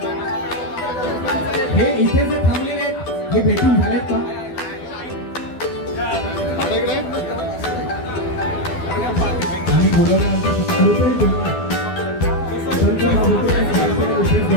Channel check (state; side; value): late; right; 12 ms